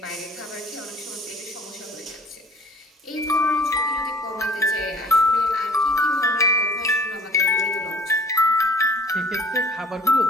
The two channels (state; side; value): normal; both; correlation 0.51